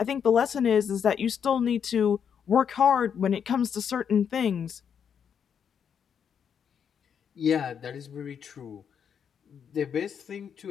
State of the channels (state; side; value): quieter; right; 7.6 dB